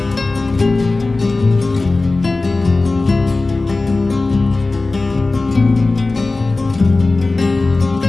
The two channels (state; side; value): quieter; right; 3.3 dB